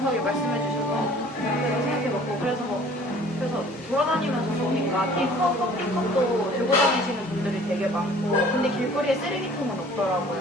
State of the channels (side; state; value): both; normal; correlation 0.51